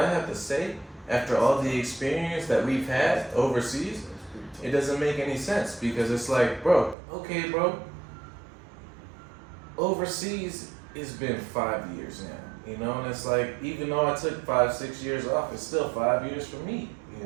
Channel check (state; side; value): drops out; left; at 7.0 s